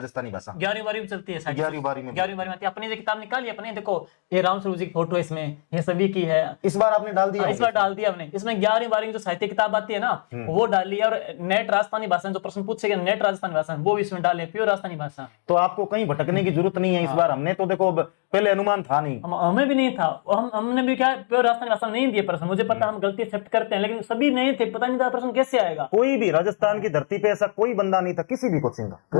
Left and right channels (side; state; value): right; silent; digital silence